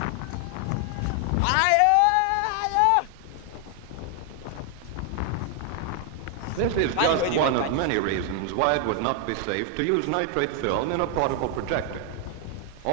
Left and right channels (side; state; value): both; different; correlation 0.00